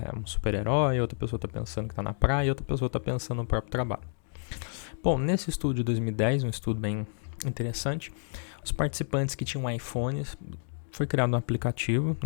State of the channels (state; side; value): silent; right; digital silence